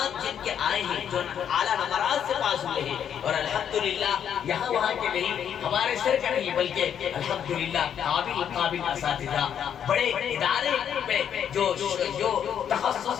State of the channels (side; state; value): right; quieter; 8.8 dB